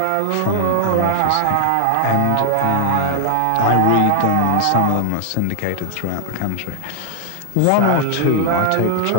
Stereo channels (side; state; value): both; different; correlation 0.00